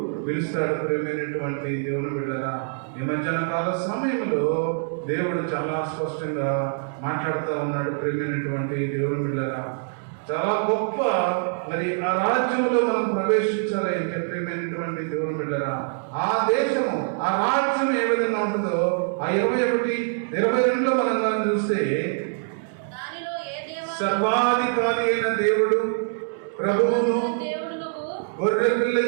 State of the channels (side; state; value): left; silent; digital silence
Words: పిలుస్తాడు. ప్రియమైనటువంటి దేవుని బిడ్డలారా, ఈ మధ్యాహ్న కాల సమయంలో దేవుడు చాలా స్పష్టంగా మాట్లాడుతూ ఉన్నాడు. ప్రియమైనటువంటి దేవుని బిడ్డలారా, చాలా గొప్ప మరి ఆ రాజ్యంలో మనం ప్రవేశించాలి అంటే ప్రియమైనటువంటి దేవుని బిడ్డలారా, ఆ దేశము, ఆ రాజ్యం ఏ విధంగా ఉంటుందో ఆ 21-22 మనం దాన్ని చూస్తే, సర్వాధికారి అయిన దేవుడు, ప్రభువును, గొర్రె